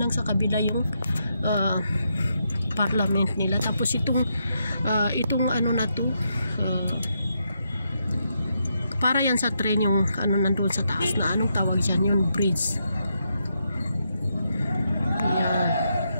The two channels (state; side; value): inverted; both; correlation -0.80